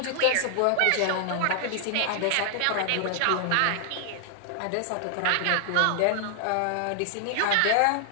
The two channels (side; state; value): both; different; correlation 0.00